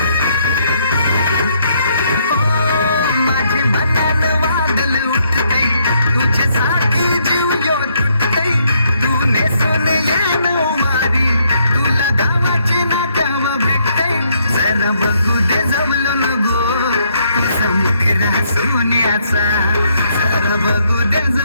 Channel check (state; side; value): inverted; both; correlation -0.72